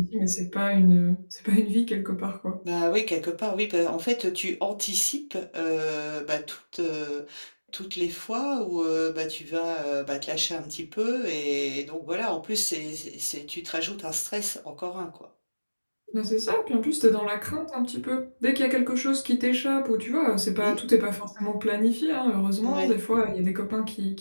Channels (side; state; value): both; inverted; correlation -1.00